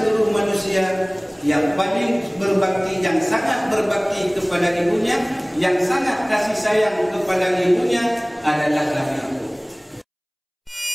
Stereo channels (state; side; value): identical; both; correlation 1.00